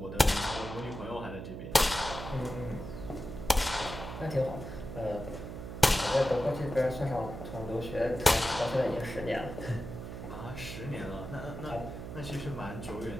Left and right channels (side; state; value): right; noise; hum, 8 dB below the sound